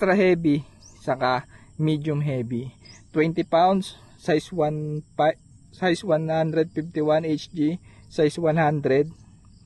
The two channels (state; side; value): identical; both; correlation 1.00